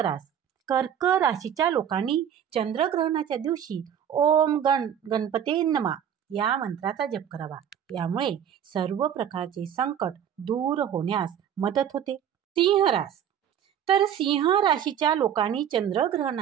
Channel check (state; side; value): quieter; left; 9.2 dB